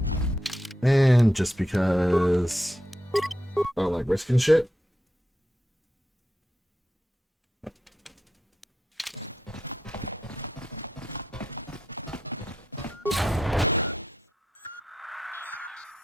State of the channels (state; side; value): normal; both; correlation 0.84